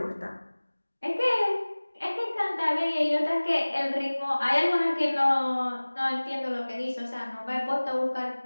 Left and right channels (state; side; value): inverted; both; correlation -1.00